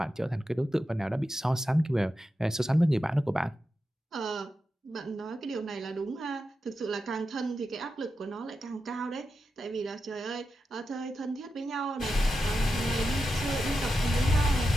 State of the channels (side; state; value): both; normal; correlation 0.89